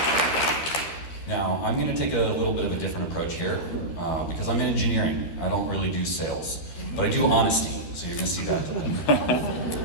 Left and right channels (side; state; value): right; late; 12 ms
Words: Now, I'm going to take a little bit of a different approach here because I'm in engineering. I don't really do sales, but I do honesty, so you're going to see that today.